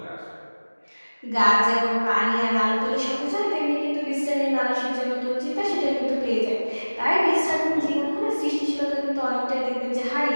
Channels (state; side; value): inverted; both; correlation -1.00